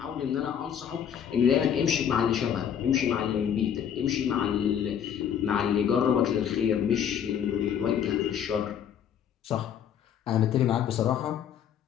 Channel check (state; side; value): quieter; right; 8.8 dB